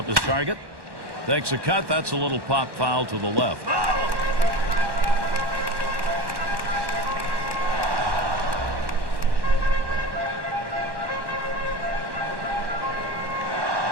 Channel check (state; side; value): late; left; 1.1 ms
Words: his target. Takes a cut. That's a little pop foul to the left.